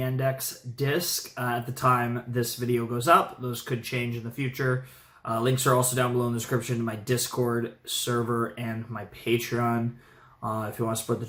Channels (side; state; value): both; identical; correlation 1.00